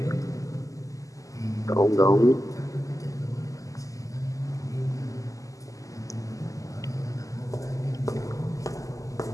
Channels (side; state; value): right; late; 0.16 ms